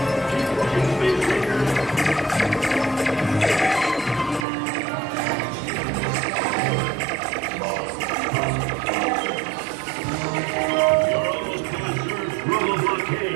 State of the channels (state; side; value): drops out; left; at 4.5 s